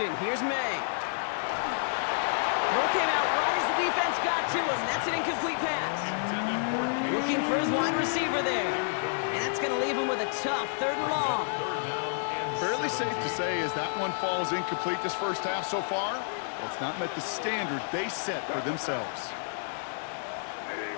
here's May. Throw came out right as the defense got to him. That's an incomplete pass. Looking for his wide receiver there. And that's going to leave him with a tough 3rd and long. Fairly safe to say as that one falls incomplete this 1st half so far, well, it's not met the standard they set for themselves.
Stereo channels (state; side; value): silent; right; digital silence